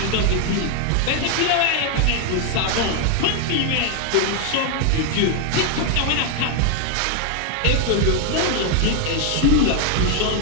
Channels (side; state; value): both; different; correlation 0.00